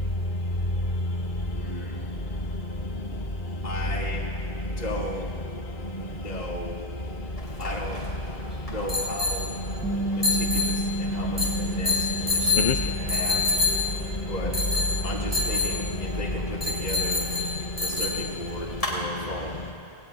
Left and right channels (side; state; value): right; late; 1.7 ms